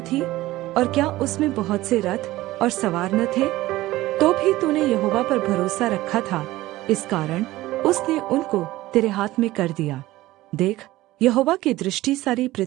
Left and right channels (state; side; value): quieter; left; 17.3 dB